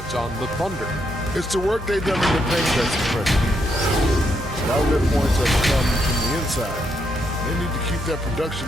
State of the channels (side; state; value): both; normal; correlation 0.78